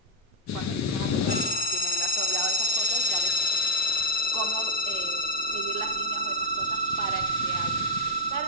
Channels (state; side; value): normal; both; correlation -0.03